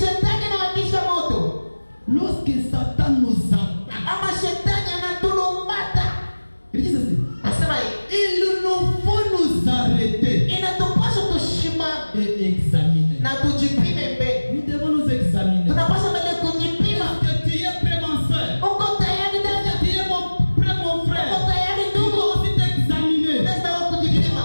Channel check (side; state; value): both; inverted; correlation -1.00